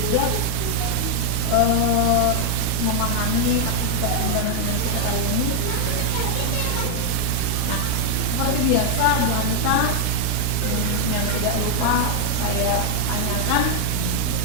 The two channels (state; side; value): different; both; correlation 0.00